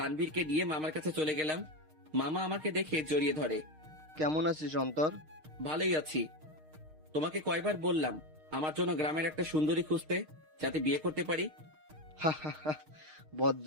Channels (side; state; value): left; late; 6.5 ms